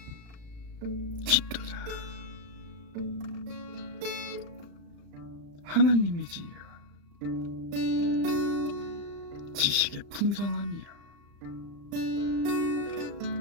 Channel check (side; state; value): left; late; 35 ms